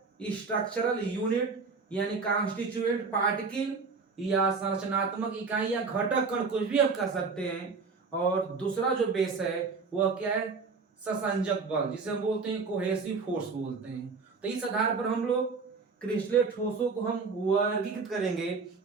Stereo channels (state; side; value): quieter; left; 4.7 dB